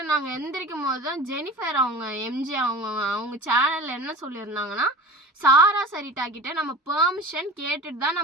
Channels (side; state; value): both; normal; correlation 0.36